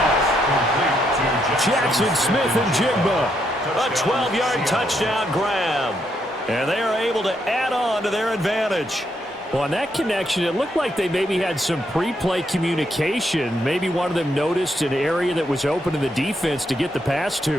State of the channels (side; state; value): both; normal; correlation 0.77